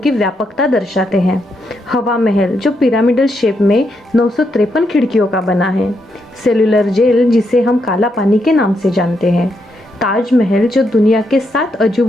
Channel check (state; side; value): normal; both; correlation 0.80